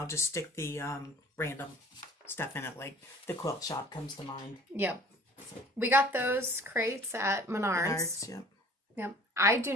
just stick the random stuff in it, like the quilt shop comes to mind. Yep. We got those crates at Menards. Yep. Yep.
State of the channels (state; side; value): normal; both; correlation 0.48